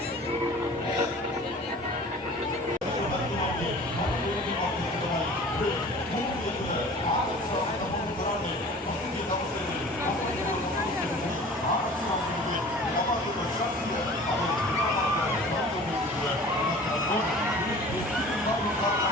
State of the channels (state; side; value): normal; both; correlation 0.44